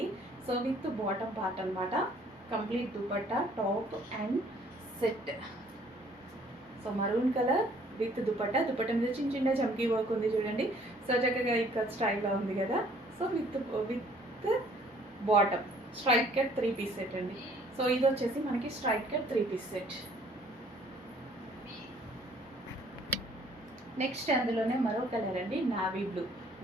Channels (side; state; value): both; normal; correlation 0.59